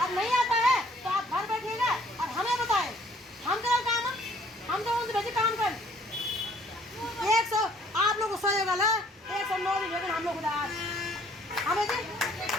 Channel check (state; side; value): normal; both; correlation 0.60